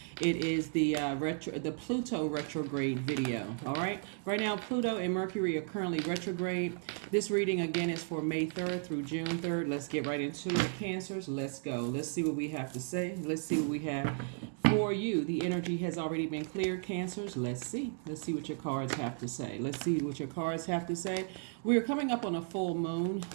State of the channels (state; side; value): silent; left; 55 dB below the other